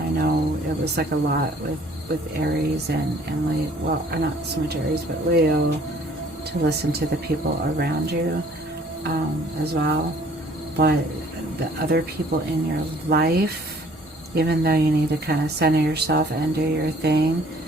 know it was like a lot with Aries and Leo, well, not so much Aries, but Leo, to listen to the people around you as well. But the other people in your life, even though you need to kind of center yourself and do your thing,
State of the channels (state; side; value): normal; both; correlation 0.56